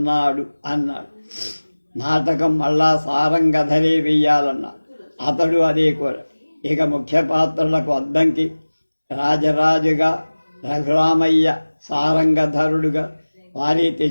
అన్నాడు. నాటకం మళ్ళా సారంగధరే వెయ్యాలన్నాడు. అతడు అదే కోర. ఇక ముఖ్య పాత్రలకు అద్దంకి రాజరాజుగా, రఘురామయ్య సారంగధరుడుగా వారి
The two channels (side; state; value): both; inverted; correlation -1.00